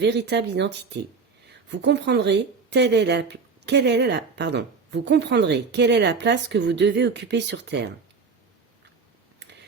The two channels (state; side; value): quieter; left; 4.9 dB